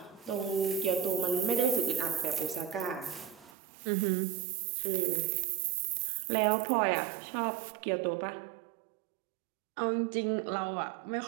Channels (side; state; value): left; drops out; at 3.5 s